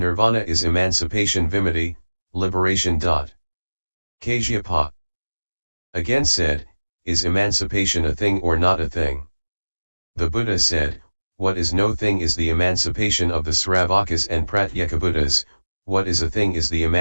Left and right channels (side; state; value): both; inverted; correlation -1.00